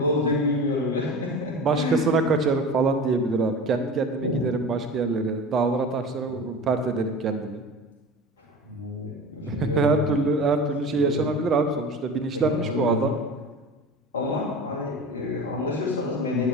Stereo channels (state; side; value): normal; both; correlation 0.34